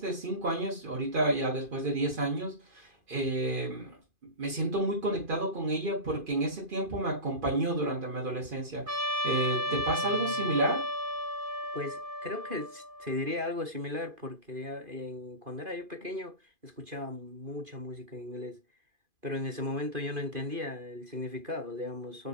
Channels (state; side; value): late; left; 2.5 ms